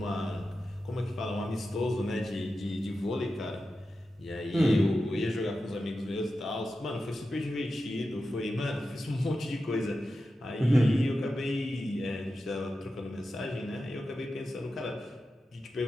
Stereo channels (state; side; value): normal; both; correlation 0.91